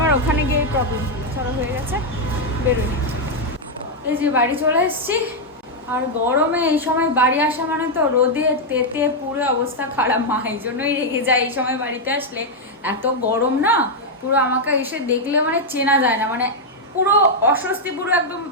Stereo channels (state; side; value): normal; both; correlation -0.01